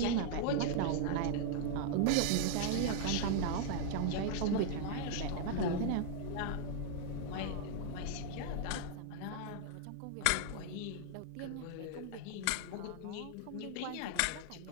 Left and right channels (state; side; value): different; both; correlation 0.00